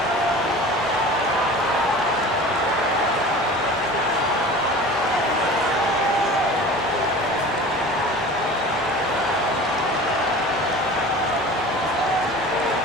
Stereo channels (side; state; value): both; normal; correlation 0.39